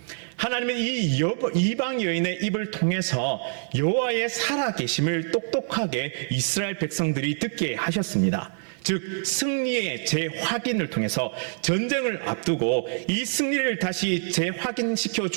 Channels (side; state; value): left; silent; 61 dB below the other